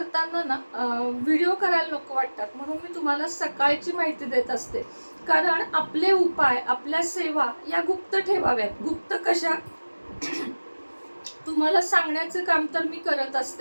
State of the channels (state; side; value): inverted; both; correlation -1.00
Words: ना व्हिडिओ करायला नको वाटतात, म्हणून मी तुम्हाला सकाळची माहिती देत असते. कारण आपले उपाय, आपल्या सेवा या गुप्त ठेवाव्यात. गुप्त कशा, तुम्हाला सांगण्याचं काम तर मी करत